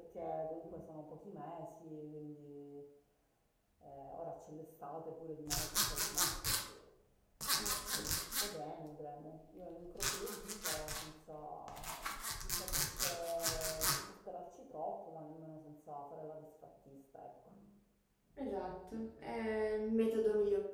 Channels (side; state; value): both; identical; correlation 1.00